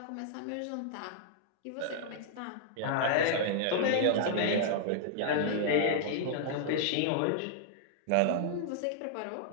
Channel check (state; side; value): different; both; correlation -0.01